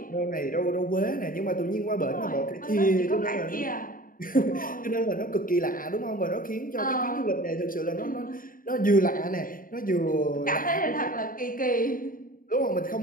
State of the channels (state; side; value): late; right; 0.41 ms